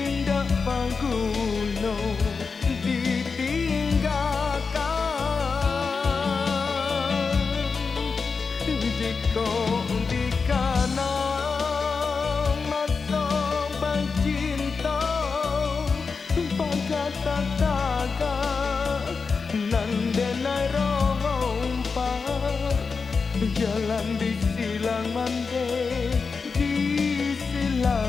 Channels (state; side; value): quieter; right; 4.9 dB